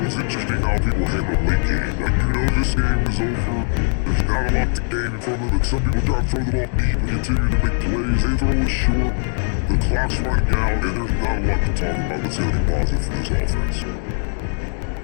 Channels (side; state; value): right; silent; 55 dB below the other